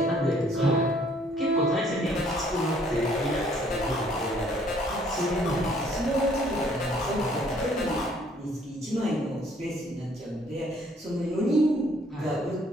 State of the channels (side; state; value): both; normal; correlation 0.62